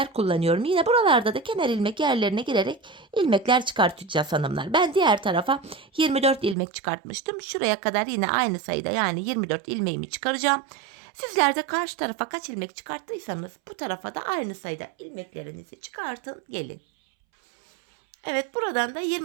kullanıyorum. Yine buralarda da kenar ilmek yerlerine girerek ilmekler çıkartacağız hanımlar. Ben diğer tarafa 24 ilmek çıkartmıştım. Şuraya kadar yine aynı sayıda yani 24 ilmeğimi çıkaracağım. Sizler de karşı tarafa kaç ilmek çıkarttıysanız bu tarafa da aynı sayıda ilmeklerinizi çıkartın gelin. Evet, buradan da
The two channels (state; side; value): drops out; left; at 6.6 s